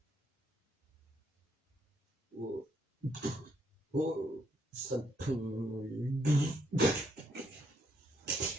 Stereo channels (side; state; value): both; normal; correlation 0.73